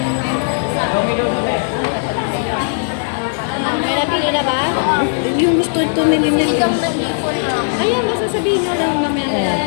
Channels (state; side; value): silent; right; digital silence